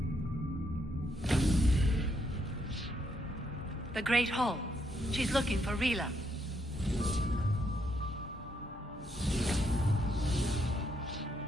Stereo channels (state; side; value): normal; both; correlation 0.76